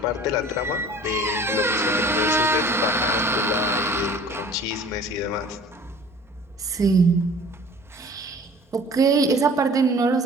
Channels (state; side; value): normal; both; correlation 0.47